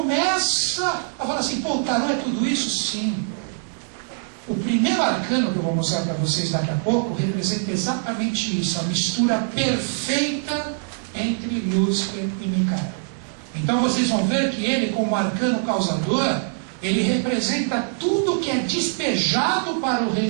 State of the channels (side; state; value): left; silent; digital silence